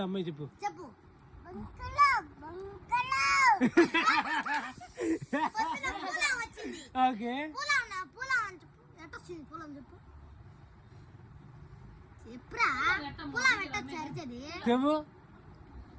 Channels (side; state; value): both; identical; correlation 1.00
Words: అమ్మాయి చెప్పు. ఓకే. చెప్పు.